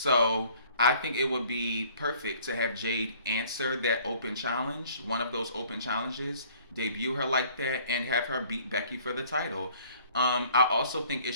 I think it would be perfect to have Jade answer that open challenge, one of those open challenges, debut her like that, and have her beat Becky for the title. I also think it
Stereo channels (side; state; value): both; inverted; correlation -0.56